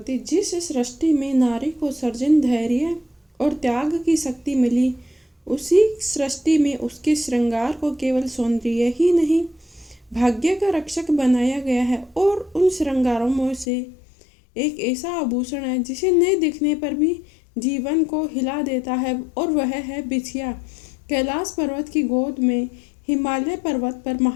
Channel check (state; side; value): drops out; right; at 13.7 s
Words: जिस सृष्टि में नारी को सर्जन धैर्य और त्याग की शक्ति मिली, उसी सृष्टि में उसके श्रृंगार को केवल सौंदर्य ही नहीं, भाग्य का रक्षक बनाया गया है। और उन श्रृंगारों में से एक ऐसा आभूषण है जिसे न दिखने पर भी जीवन को हिला देता है, और वह है बिछिया। कैलाश पर्वत की गोद में हिमालय पर्वत पर